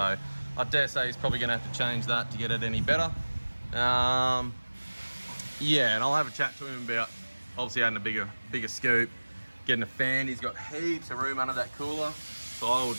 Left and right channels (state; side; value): inverted; both; correlation -1.00